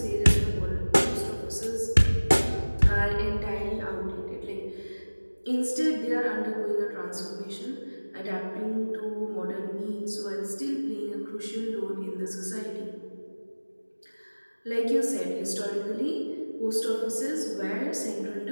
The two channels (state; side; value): inverted; both; correlation -1.00